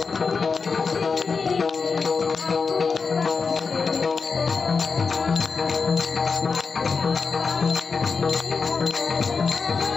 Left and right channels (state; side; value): quieter; right; 5.0 dB